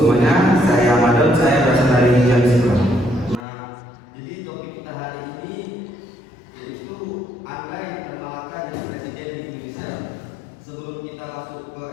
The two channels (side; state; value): right; drops out; at 3.4 s